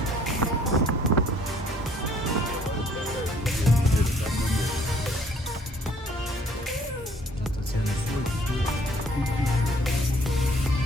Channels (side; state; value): both; normal; correlation 0.60